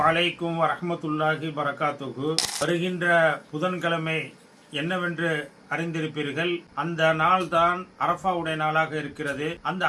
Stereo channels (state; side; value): identical; both; correlation 1.00